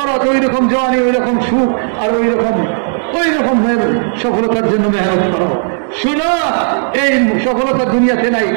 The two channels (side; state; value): left; silent; digital silence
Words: তো ওই রকম জওয়ানি, ওই রকম সুখ, আর ওই রকম সফলতার জন্য মেহনত করো। শুনো, এই সফলতা দুনিয়াতে নাই,